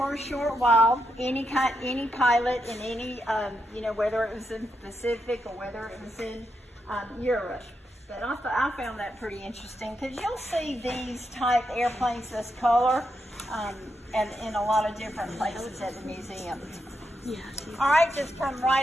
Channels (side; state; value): both; normal; correlation 0.83